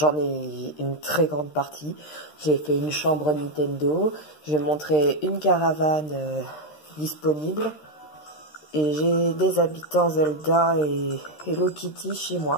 ai une très grande partie. J'ai fait une chambre Nintendo, j'ai montré une caravane disponible et j'ai des habitants Zelda et Hello Kitty chez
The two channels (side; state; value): right; late; 13 ms